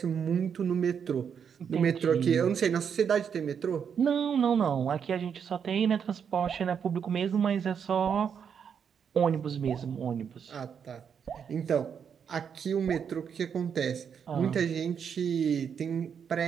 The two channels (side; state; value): left; quieter; 7.3 dB